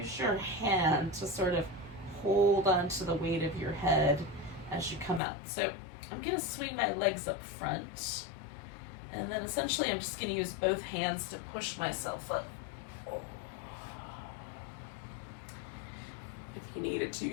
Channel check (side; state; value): right; drops out; at 5.2 s